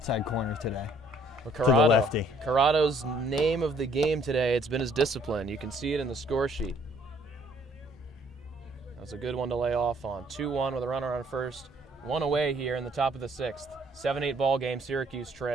corner today. But to the lefty. Corrado's name of the game today, it's been his discipline. You can see it in the score sheet. That's a good one to lay off on. 2-1 with a runner on first. 1 away here in the top of the 6th. 7-8 ball game. Syracuse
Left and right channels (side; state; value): both; normal; correlation 0.62